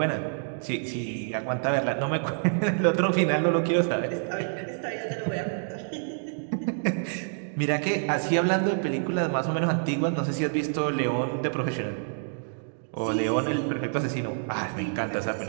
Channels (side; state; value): left; silent; digital silence